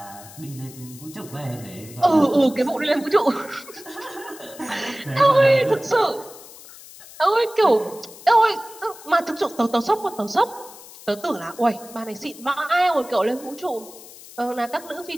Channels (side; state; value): left; noise; hiss, 18 dB below the sound